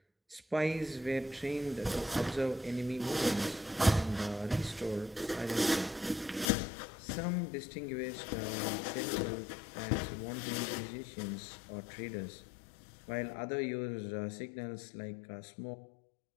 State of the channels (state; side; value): drops out; right; at 6.5 s